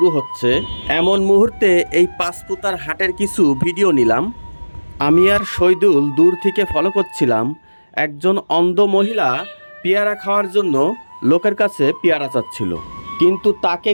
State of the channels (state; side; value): inverted; both; correlation -1.00